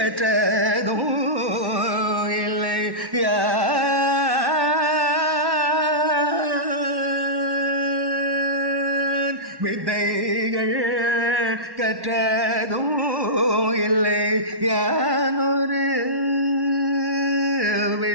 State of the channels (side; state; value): left; late; 1.1 ms